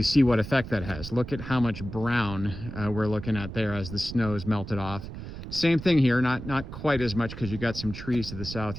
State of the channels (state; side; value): noise; right; rumble, 10 dB below the sound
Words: see what effect that has. Look at how much brown we're looking at there as the snow is melted off. Same thing here, not quite as much because you got some trees to the south